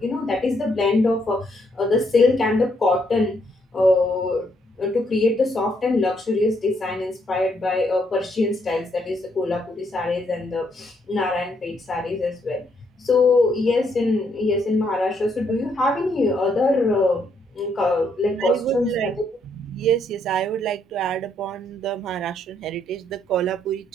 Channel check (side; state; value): both; normal; correlation 0.73